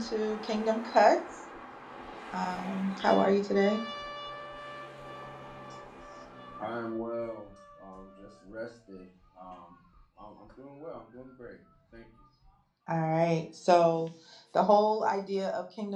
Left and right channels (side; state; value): both; identical; correlation 1.00